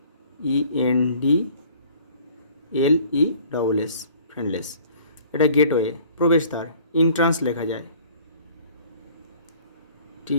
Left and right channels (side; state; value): both; inverted; correlation -0.53